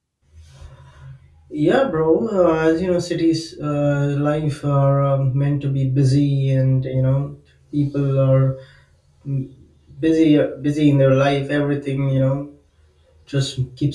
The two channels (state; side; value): identical; both; correlation 1.00